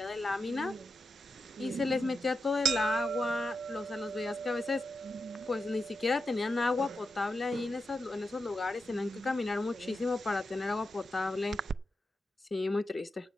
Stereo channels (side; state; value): both; normal; correlation 0.89